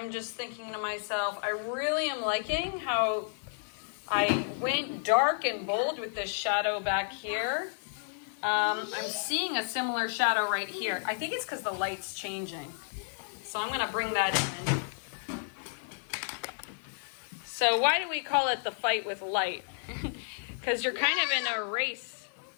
just thinking to myself, I really am liking how I went dark and bold with this shadow back here. I'm seeing a similar shadow right here. I think it's because the light's changing. So I'm going to bring that in. So why do we call it the fight with light? Because you're kind of in a race.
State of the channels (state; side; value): silent; right; 57 dB below the other